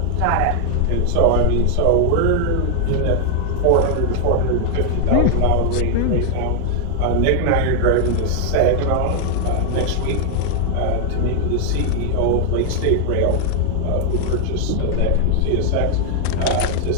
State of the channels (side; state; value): both; different; correlation 0.00